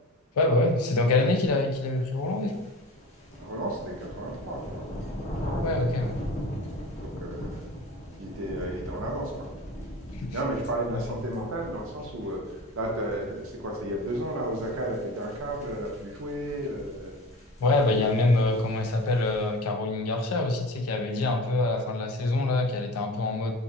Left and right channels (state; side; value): normal; both; correlation 0.36